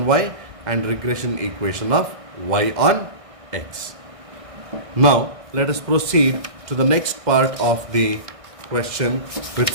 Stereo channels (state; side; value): late; left; 1.6 ms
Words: y and regression equation of y on x. Now let us proceed to the next part of the question, which